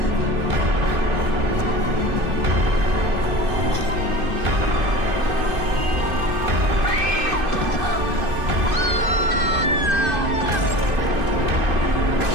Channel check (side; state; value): left; late; 2.5 ms